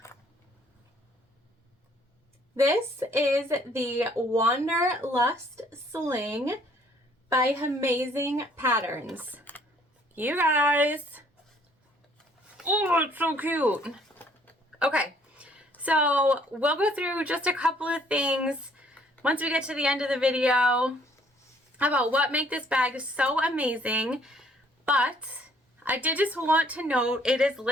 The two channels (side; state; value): both; normal; correlation 0.62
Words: This is the Wanderlust Sling by Hemazing Patterns. You guys. Oh, it's so cute. Okay, so we'll go through just a couple of things once we get to the end of the video about what make this bag so amazing. But I did just want to note it is